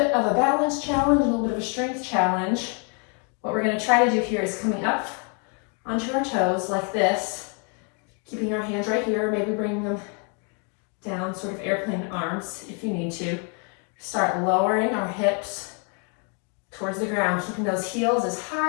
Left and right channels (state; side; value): quieter; right; 38.1 dB